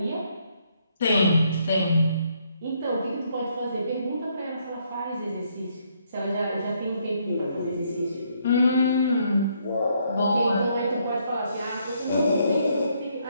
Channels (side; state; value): both; inverted; correlation -0.72